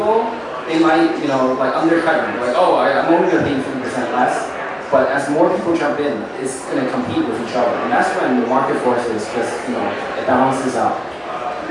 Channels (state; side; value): identical; both; correlation 1.00